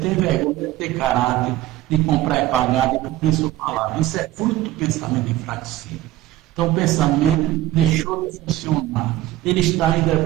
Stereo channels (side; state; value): left; quieter; 15.0 dB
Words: vergonha de ter caráter, de comprar e pagar, de cumprir sua palavra. Isso é fruto do pensamento enfraquecido. Então, o pensamento deixou de funcionar. Ele está ainda